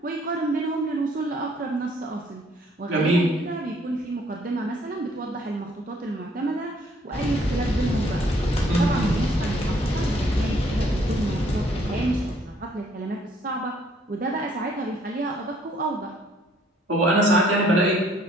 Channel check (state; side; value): normal; both; correlation 0.63